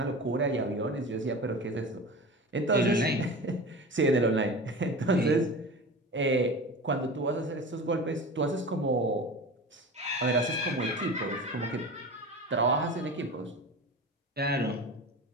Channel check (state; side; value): normal; both; correlation 0.32